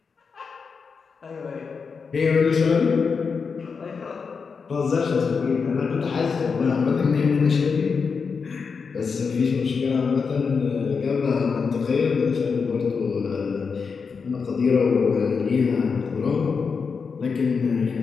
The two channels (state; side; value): quieter; right; 5.4 dB